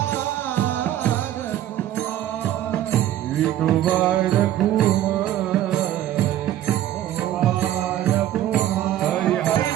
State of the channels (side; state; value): left; quieter; 12.5 dB